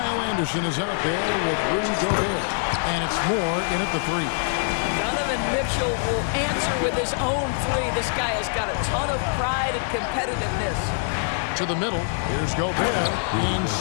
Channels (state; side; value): silent; right; digital silence